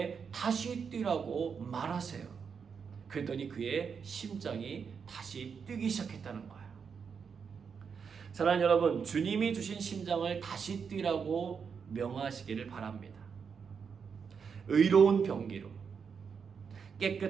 다시 뛰라고 말하세요. 그랬더니 그의 심장이 다시 뛰기 시작했다는 거예요. 사랑하는 여러분, 주님이 주신 심장을 다시 뛰라고 명하시기를 바랍니다. 의로운 병기로,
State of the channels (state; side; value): quieter; left; 6.3 dB